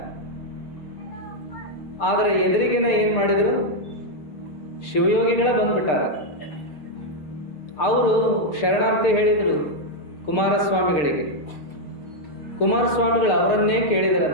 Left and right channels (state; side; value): late; right; 6.7 ms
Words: ಆದರೆ ಎದುರಿಗಿನ ಏನು ಮಾಡಿದ್ರು, ಶಿವಯೋಗಿಗಳ ಬಂದ್ಬಿಟ್ಟಾರ. ಅವರು ಶರಣಾರ್ಥಿ ಹೇಳಿದರು ಕುಮಾರಸ್ವಾಮಿಗಳಿಗೆ. ಕುಮಾರಸ್ವಾಮಿಗಳು ಅವರನ್ನೇ